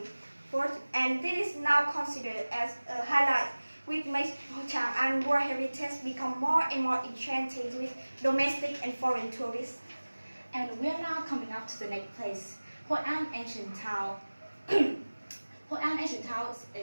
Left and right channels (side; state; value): both; inverted; correlation -1.00